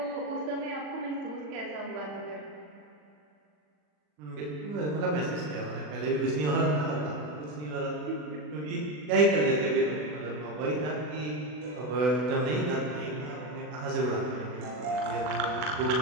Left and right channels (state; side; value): late; left; 40 ms